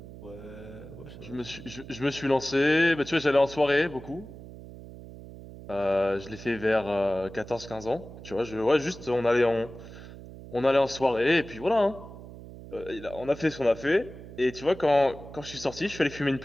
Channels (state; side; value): noise; right; hum, 15 dB below the sound